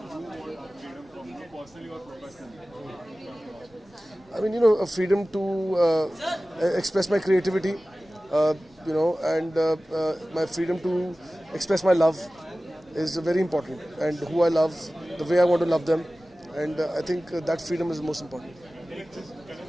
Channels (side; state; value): both; normal; correlation 0.97